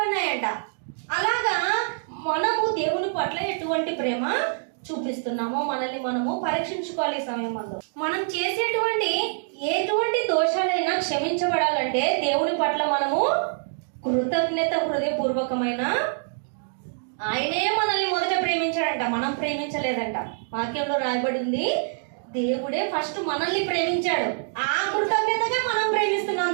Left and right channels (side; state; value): left; silent; digital silence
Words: అలాగా మనము దేవుని పట్ల ఎటువంటి ప్రేమ చూపిస్తున్నామో మనల్ని మనము పరీక్షించుకోవాలి. ఈ సమయంలో మనం చేసేటువంటి ఎటువంటి దోషాలైనా క్షమించబడాలంటే దేవుని పట్ల మనము కృతజ్ఞత హృదయపూర్వకమైన, ఆయనే మనల్ని మొదట ప్రేమించాడంట, మనం ప్రేమించలేదంట. వాక్యంలో రాయబడి ఉంది, దేవుడే ఫస్ట్ మనల్ని ప్రేమించాడు. ఆ కృతజ్ఞతగా మనం ప్రేమిస్తున్నాం